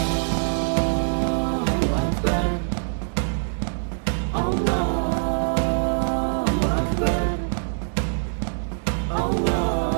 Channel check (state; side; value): silent; left; 58 dB below the other